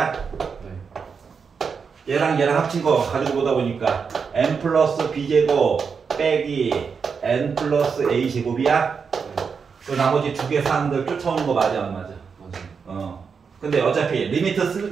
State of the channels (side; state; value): left; quieter; 5.8 dB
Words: 네. 얘랑 얘랑 합친 거 가지고 보다 보니까 n 플러스 b제곱 빼기 n 플러스 a제곱이야? 네. 그 나머지 두 개 사항들 쫓아오는 거 맞아 안 맞아? 맞아요. 근데 어차피